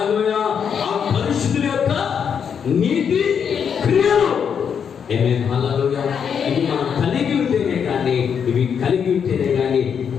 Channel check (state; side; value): quieter; right; 7.3 dB